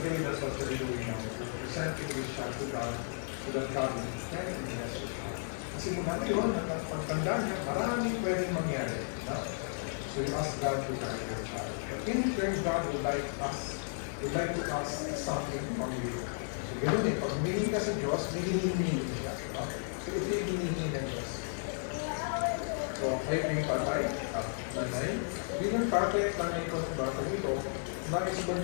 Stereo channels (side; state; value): right; silent; 55 dB below the other